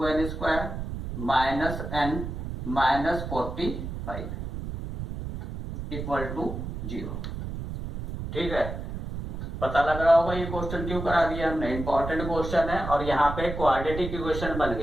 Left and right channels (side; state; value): right; noise; rumble, 6 dB below the sound